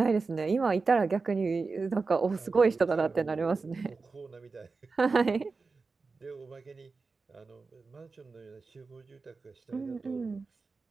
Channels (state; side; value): quieter; left; 4.2 dB